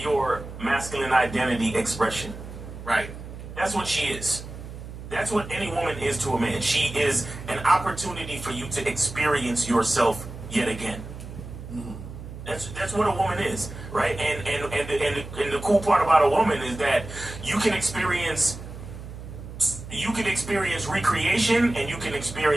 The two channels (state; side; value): noise; right; hum, 12 dB below the sound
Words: masculine identity expression. Right. That's what she is. That's what any woman is to a man. She is an opportunity for you to experience yourself yet again. That's what a woman is, right? And the cool part about a woman is that you can experience recreation and you can